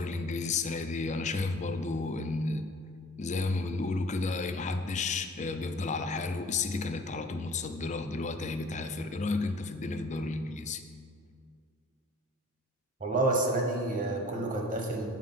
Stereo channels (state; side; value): normal; both; correlation 0.48